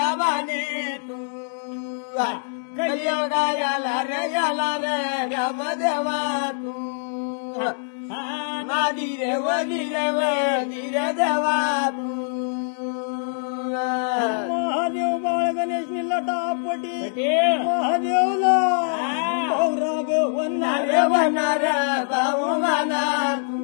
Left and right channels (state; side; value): silent; right; digital silence